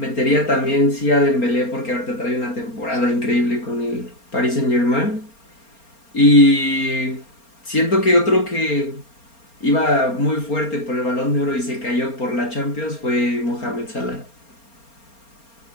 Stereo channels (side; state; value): right; late; 4.3 ms